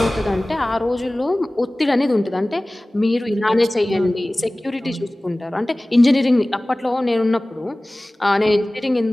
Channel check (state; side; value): normal; both; correlation 0.98